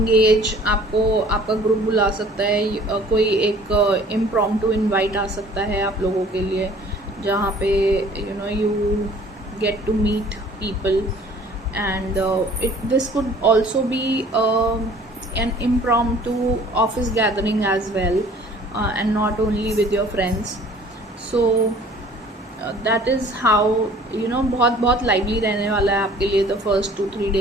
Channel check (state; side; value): normal; both; correlation 0.52